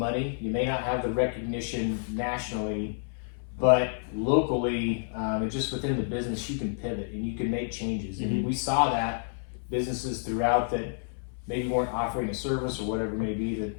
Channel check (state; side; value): silent; right; 58 dB below the other